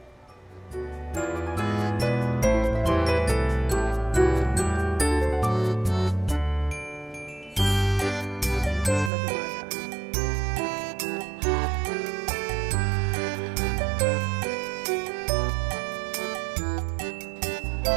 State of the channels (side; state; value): left; drops out; at 9.1 s